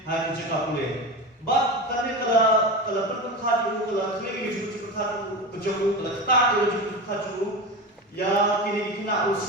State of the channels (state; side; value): normal; both; correlation 0.24